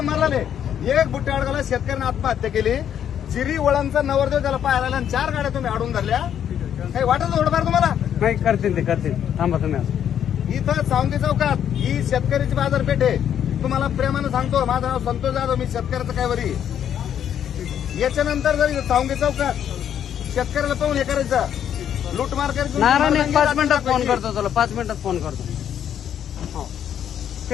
एक बुट्टे अडगाला शेतकऱ्यांनी आत्महत्या केली. जिरी वळांचा नवरदेव त्याला पाहायला आणि 4 गाड्या तुम्ही अडून धरल्या. काही वाटत थोडंफार तुम्हाला. नाही करतील ते करतील. थांबा तुम्ही. इथं सावंगी चौकात ही शेतकऱ्याची बाजारपेठ आहे. तुम्हाला प्रेमानं सांगतो, माझं नाव संतोष जाधव, मी शेतकऱ्याचं काय वरी. याच्यानंतर जर सावंगी चौकात शेतकऱ्याला पाहून हे करायचं लूटमार करायचं. नारायण 5 मिनिटात फोन करतो तुला. 5 मिनिटात फोन करतो.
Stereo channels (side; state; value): right; quieter; 9.5 dB